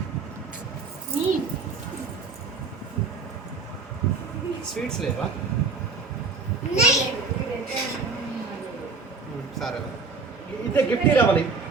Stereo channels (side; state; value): left; quieter; 4.5 dB